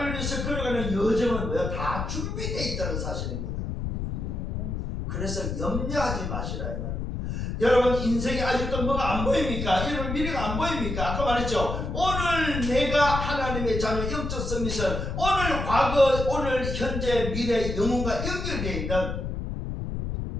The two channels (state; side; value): noise; left; rumble, 3 dB below the sound